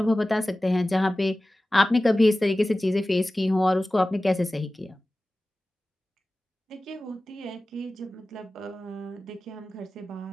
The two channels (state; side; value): normal; both; correlation 0.97